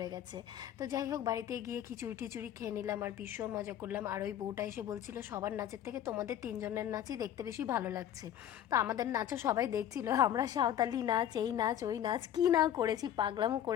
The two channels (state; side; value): quieter; right; 10.7 dB